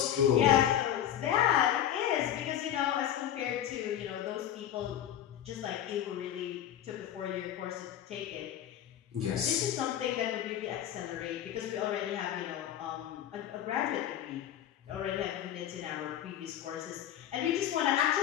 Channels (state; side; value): quieter; right; 10.9 dB